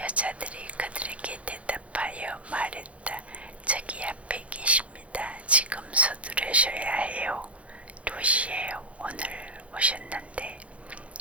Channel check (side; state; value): left; late; 0.063 ms